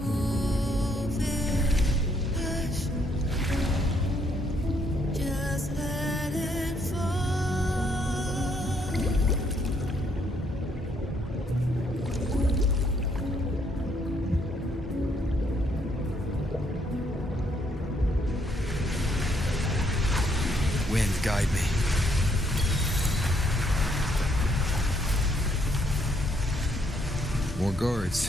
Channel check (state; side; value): normal; both; correlation 0.71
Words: Wind, guide me. More